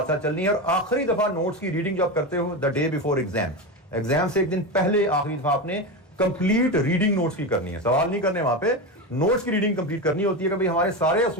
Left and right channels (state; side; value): normal; both; correlation 0.18